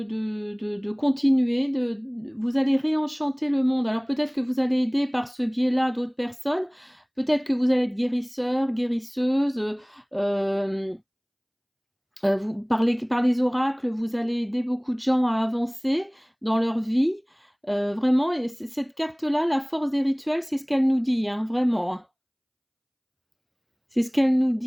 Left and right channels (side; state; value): both; identical; correlation 1.00